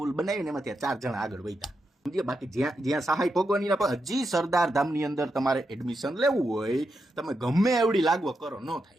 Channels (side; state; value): both; normal; correlation 0.85